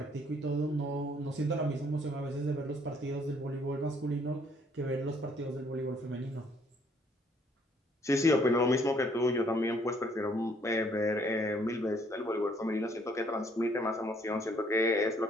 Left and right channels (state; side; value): normal; both; correlation 0.65